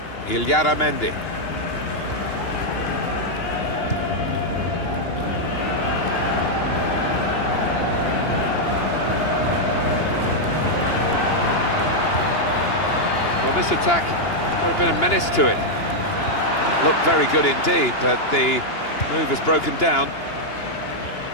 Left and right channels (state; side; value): late; right; 2.9 ms